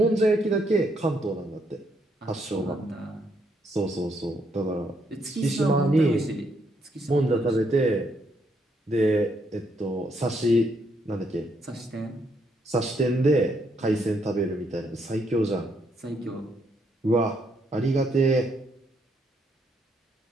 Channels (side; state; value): both; normal; correlation 0.74